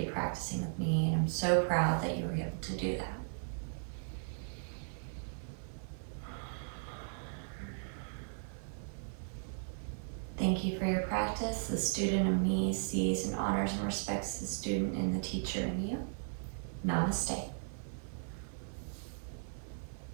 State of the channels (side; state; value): left; silent; digital silence